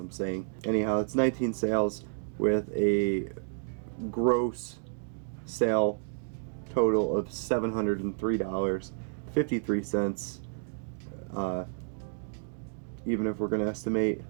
I'm saying. Anyhow, it's 19 sales with a gross sale total of $703.53. Even if we're going to estimate,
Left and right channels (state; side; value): silent; left; digital silence